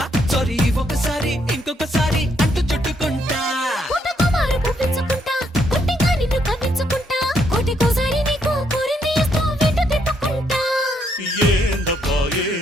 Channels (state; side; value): normal; both; correlation 0.74